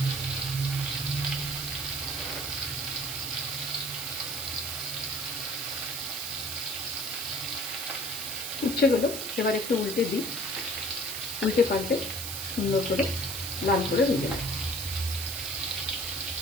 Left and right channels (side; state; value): right; noise; hiss, 5 dB below the sound